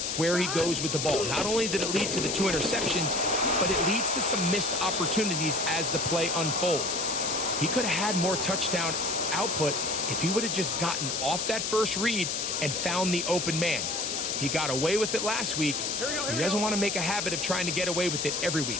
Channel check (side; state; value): left; noise; hiss, 1 dB below the sound